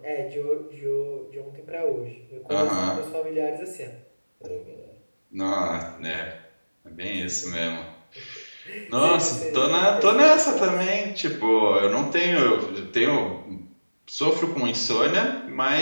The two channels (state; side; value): inverted; both; correlation -1.00